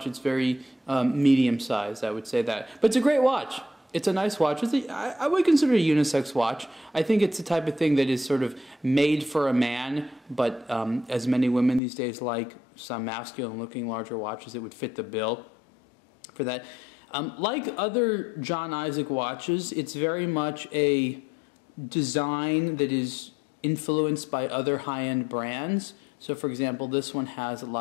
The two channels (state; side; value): drops out; right; at 11.8 s